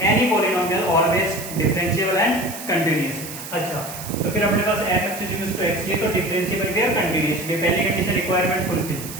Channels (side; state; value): right; noise; hiss, 11 dB below the sound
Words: any polynomial always differentiable and continuous. अच्छा, तो फिर अपने पास fx इक्वल्स टू x, ये तो डिफरेंशिएबल भी और कंटीन्यूअस भी, पहली कंडीशन रिक्वायरमेंट फुलफिल,